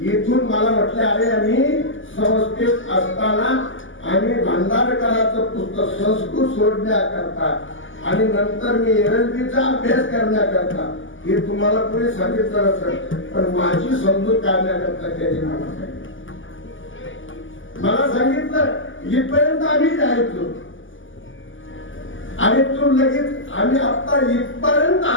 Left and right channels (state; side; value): late; right; 0.57 ms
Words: मला म्हटले, अरे आम्ही संस्थेत असताना आम्ही भांडारकरांचं पुस्तक संस्कृत सोडण्याकरता आणि नंतर मी एलएलबीचा अभ्यास करण्याकरता हे तुम्हाला पुढे सांगितलं असेल, पण माझी समजूत काढण्याकरता त्याने मला सांगितलं इथपर्यंत आम्ही जायचो आणि तू लगेच आम्ही आता इथपर्यंत